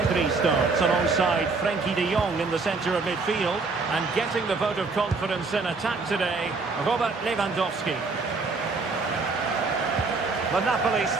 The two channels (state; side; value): quieter; left; 4.1 dB